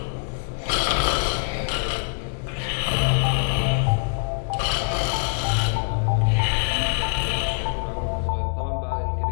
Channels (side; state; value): right; silent; digital silence